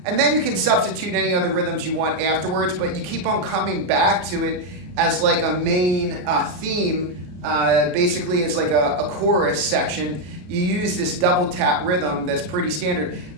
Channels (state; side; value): late; left; 33 ms